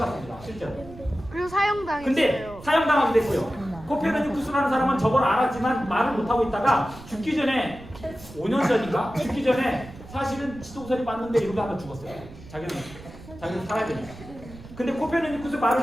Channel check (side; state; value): right; noise; rumble, 17 dB below the sound